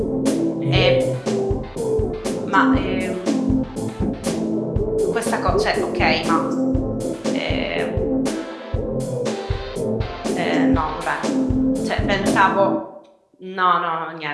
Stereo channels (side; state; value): both; identical; correlation 1.00